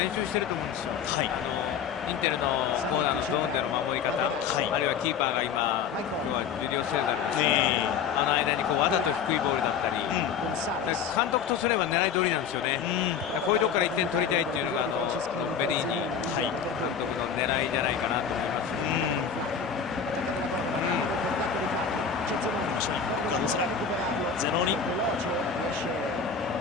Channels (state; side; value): quieter; right; 7.0 dB